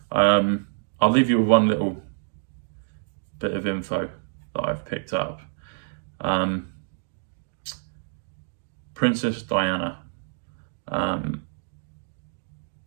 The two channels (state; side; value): silent; left; digital silence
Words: I'll leave you with one little bit of info that I've picked up. Princess Diana.